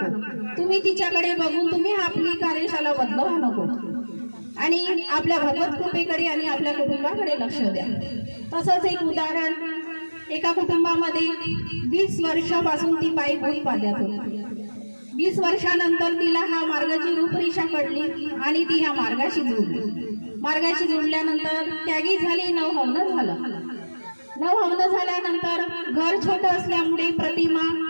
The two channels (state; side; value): inverted; both; correlation -1.00